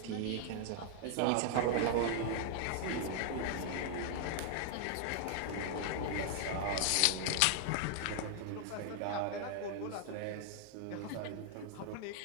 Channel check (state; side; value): different; both; correlation 0.00